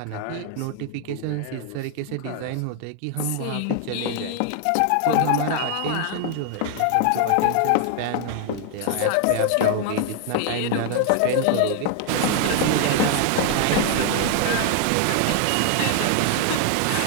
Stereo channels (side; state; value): both; different; correlation 0.00